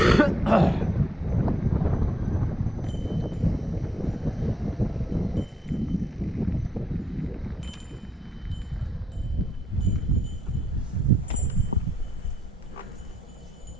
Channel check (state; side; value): normal; both; correlation 0.79